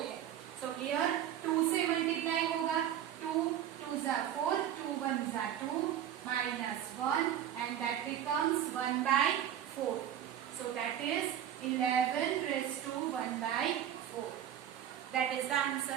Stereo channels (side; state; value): left; quieter; 10.6 dB